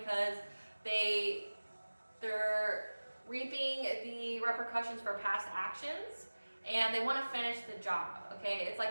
they're reaping the repercussions for past actions, and they want to finish the job, okay? It's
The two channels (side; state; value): both; inverted; correlation -1.00